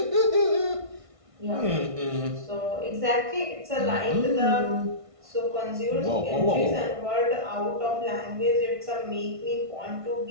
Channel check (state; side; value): late; left; 1.5 ms